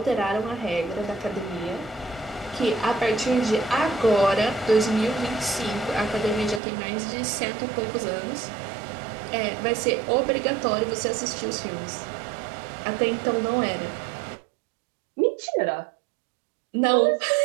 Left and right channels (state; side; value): drops out; left; at 6.6 s